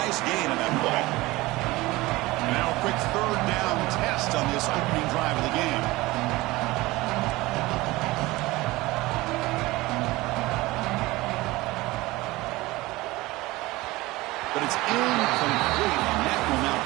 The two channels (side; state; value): left; quieter; 20.1 dB